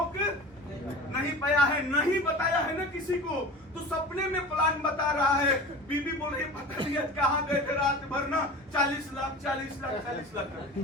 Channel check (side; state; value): both; normal; correlation 0.35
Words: नहीं पाया है, नहीं बताया है ना किसी को। तो सपने में प्लान बता रहा है, बीबी बोल रही पता नहीं कहाँ गए थे रात भर ना, 40 लाख